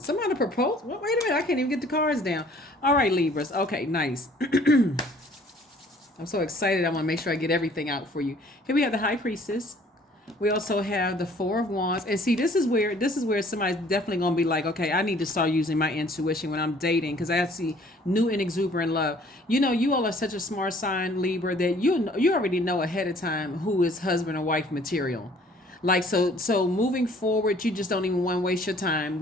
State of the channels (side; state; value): both; normal; correlation 0.56